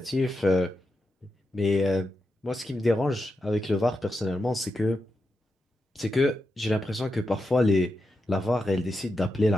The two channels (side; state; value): both; normal; correlation 0.87